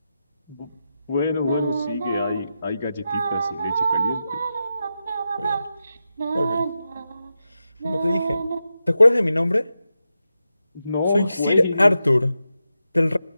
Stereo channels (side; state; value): both; inverted; correlation -0.89